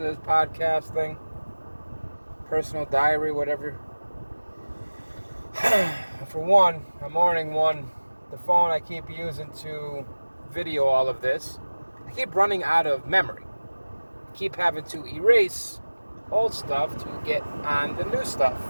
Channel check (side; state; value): both; inverted; correlation -1.00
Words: is, podcast thing, personal diary, whatever. For one, a morning one, the phone I keep using to video all of this, I keep running out of memory. I keep having to erase old stuff to get on the new stuff.